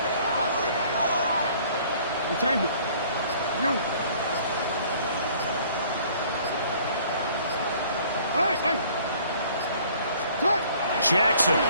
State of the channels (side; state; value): both; inverted; correlation -0.55